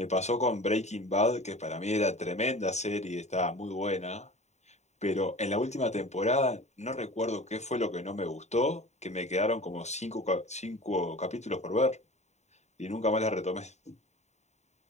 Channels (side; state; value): right; late; 0.33 ms